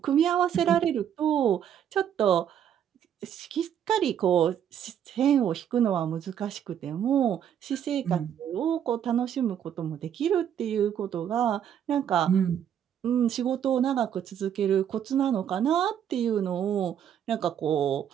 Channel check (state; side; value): quieter; left; 9.3 dB